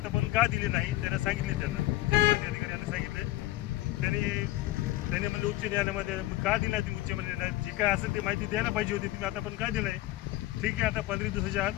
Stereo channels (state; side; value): quieter; right; 16.6 dB